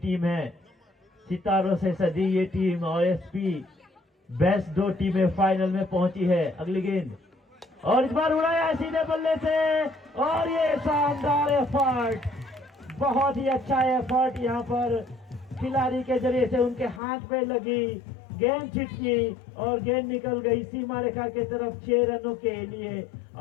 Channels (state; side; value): drops out; right; at 17.0 s